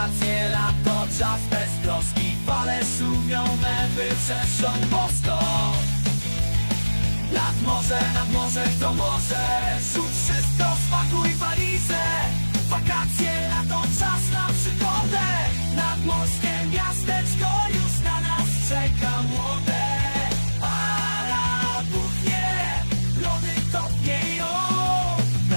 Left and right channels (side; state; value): both; inverted; correlation -1.00